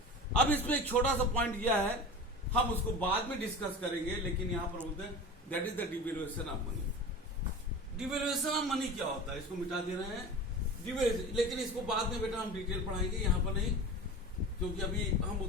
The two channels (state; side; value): normal; both; correlation 0.33